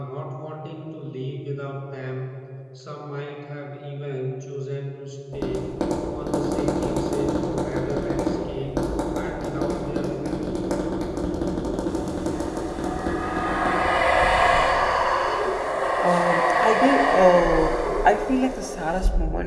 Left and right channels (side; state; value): both; identical; correlation 1.00